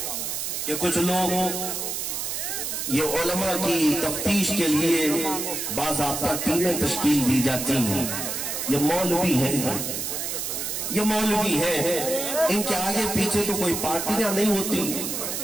کہ کچھ لوگ یہ علماء کی تفتیش کے لیے باضابطہ ٹیمیں تشکیل دی جاتی ہیں، یہ مولوی ہیں، یہ مولوی ہیں، ان کے آگے پیچھے تو کوئی پارٹیاں نہیں ہوتی،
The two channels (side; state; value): right; noise; hiss, 3 dB below the sound